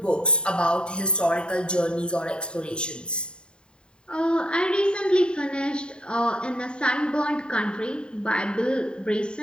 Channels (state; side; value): late; right; 0.051 ms